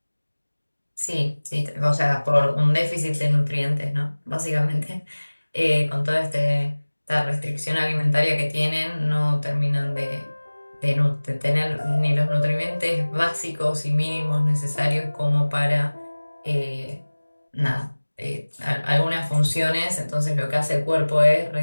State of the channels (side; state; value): both; inverted; correlation -1.00